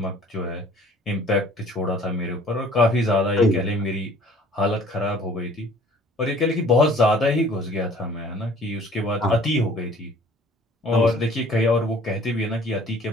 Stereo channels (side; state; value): both; normal; correlation 0.52